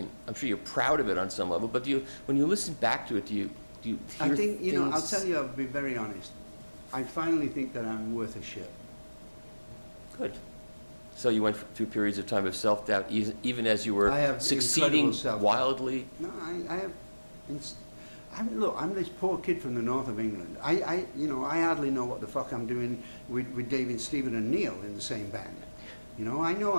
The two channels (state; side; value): inverted; both; correlation -1.00